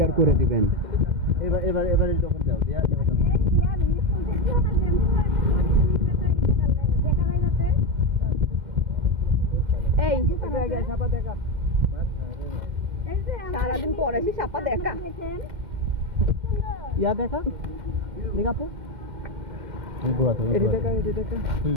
করে দিবেন। এবারে যখন দাও এই সারাদিন পরে এসে সাপা দেখা ইয়া দেখা দেখাপো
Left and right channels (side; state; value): left; late; 2.1 ms